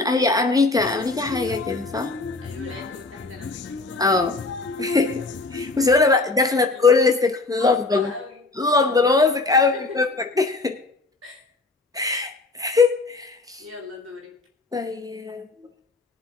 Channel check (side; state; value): right; quieter; 3.4 dB